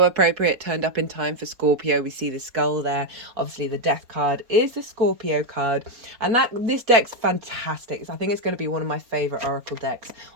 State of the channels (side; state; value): left; late; 4.2 ms